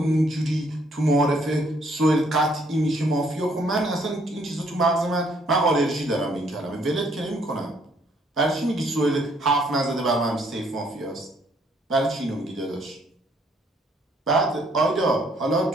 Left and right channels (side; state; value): both; normal; correlation 0.67